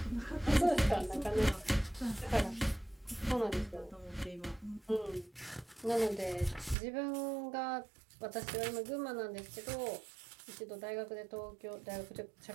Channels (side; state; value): left; drops out; at 6.8 s